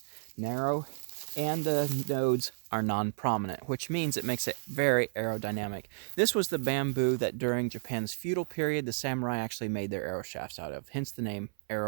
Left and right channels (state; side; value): silent; left; 56 dB below the other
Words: narrow, and the nodes are non-prominent, which means it makes it very aerodynamic. This was the bamboo that during Japan's feudal period, the samurai actually made their arrow shafts out of, hence the name